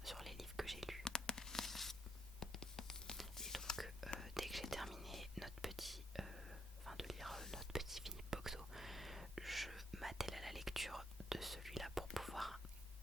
sur les livres que j'ai lus. Et donc, dès que j'ai terminé de lire notre petit Philippe Boxo, je m'attelle à la lecture de celui-là pour pouvoir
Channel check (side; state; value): both; normal; correlation 0.74